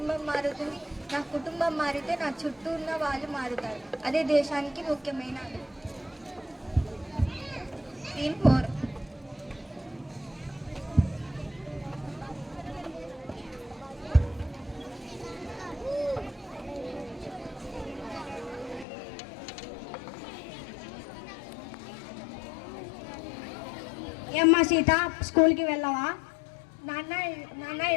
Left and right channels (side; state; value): right; drops out; at 18.9 s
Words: మారుతుంది, నా కుటుంబం మారితే నా చుట్టూ ఉన్న వాళ్ళు మారుతారు. అదే దేశానికి ముఖ్యమైనది. సీన్ 4. ఏమ్మా సీత, స్కూల్కి వెళ్ళావా? నాన్న